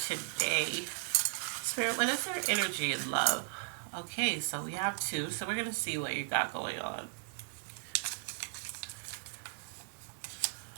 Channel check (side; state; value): left; silent; 54 dB below the other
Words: today. Spirit, what is their energy and love? Okay, so we have two, so we're going to see what you got going on.